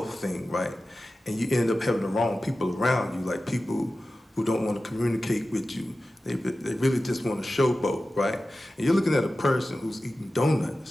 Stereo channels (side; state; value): both; normal; correlation 0.94